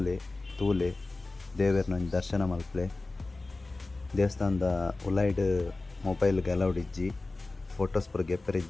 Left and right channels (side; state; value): right; quieter; 3.3 dB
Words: ತೂಲೆ ದೇವೇರ್ನ ದರ್ಶನ ಮಲ್ಪಲೆ. ದೇವಸ್ಥಾನದ ಉಲೈಡ್ ಮೊಬೈಲ್ಗೆ ಅಲೌಡ್ ಇಜ್ಜಿ, ಫೋಟೋಸ್ ಪೂರ